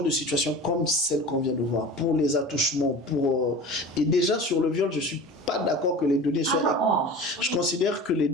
de situation comme celle qu'on vient de voir, pour les attouchements, et déjà sur le viol, je ne suis pas d'accord que les données soient... Je considère que les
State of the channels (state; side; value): normal; both; correlation 0.36